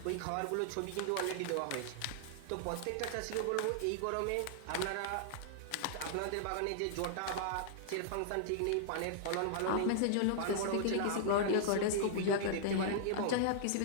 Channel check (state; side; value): different; both; correlation -0.01